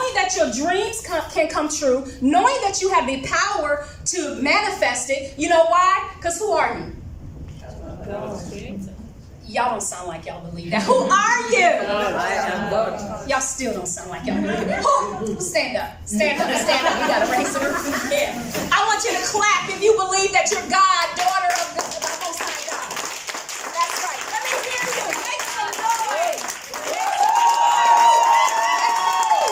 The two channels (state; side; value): identical; both; correlation 1.00